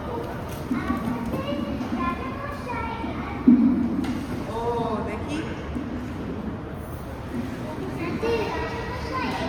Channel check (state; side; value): identical; both; correlation 1.00